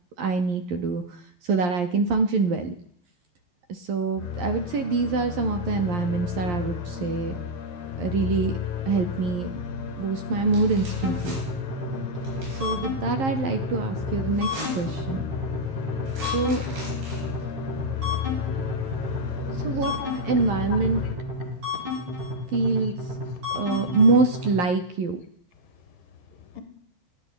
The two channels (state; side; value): late; left; 11 ms